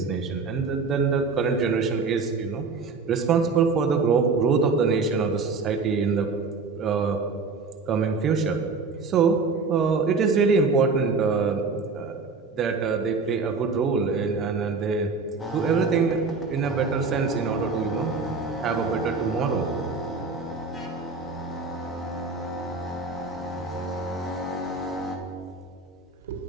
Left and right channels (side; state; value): left; quieter; 4.4 dB